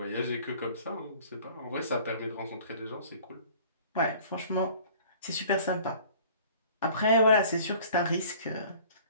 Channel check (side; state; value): both; inverted; correlation -0.49